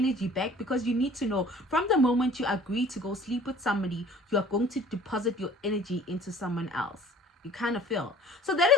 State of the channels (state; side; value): normal; both; correlation 0.49